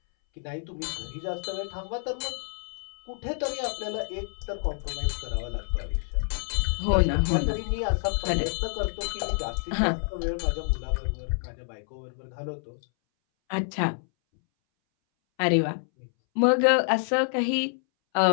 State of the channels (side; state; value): right; silent; 60 dB below the other